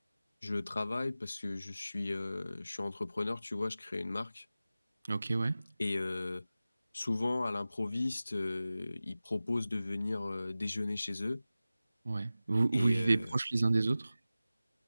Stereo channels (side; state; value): both; inverted; correlation -0.95